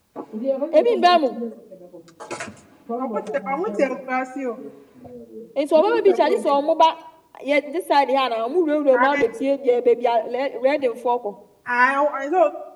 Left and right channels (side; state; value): both; identical; correlation 1.00